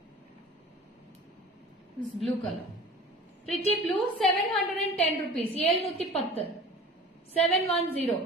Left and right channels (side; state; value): both; normal; correlation 0.41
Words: This blue color. Pretty blue, 710 rupees. 710. 710.